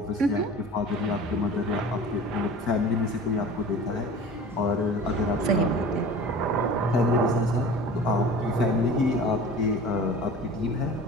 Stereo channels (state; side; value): normal; both; correlation 0.40